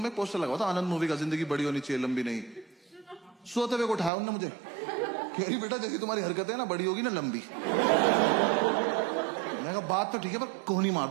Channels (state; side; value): drops out; left; at 4.1 s